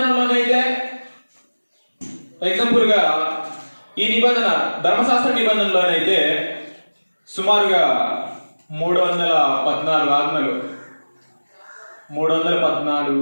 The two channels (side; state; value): both; inverted; correlation -1.00